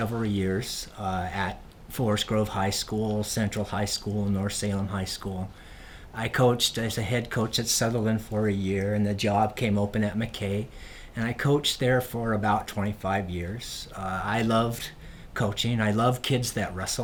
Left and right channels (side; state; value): both; identical; correlation 1.00